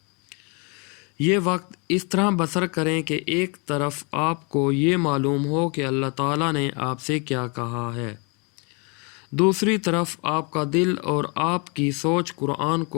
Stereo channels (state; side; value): quieter; right; 32.7 dB